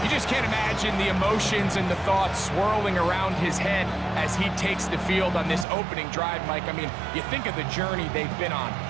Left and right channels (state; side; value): drops out; left; at 5.7 s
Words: You just can't imagine the emotions and the thoughts swirling around his head as he takes the field on this opening drive, Mike. I mean, you think of the journey they've been on,